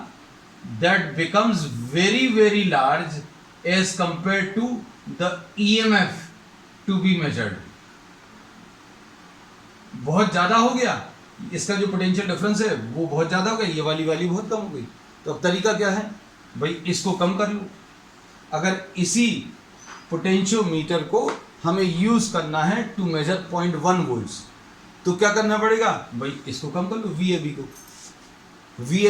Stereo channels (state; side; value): identical; both; correlation 1.00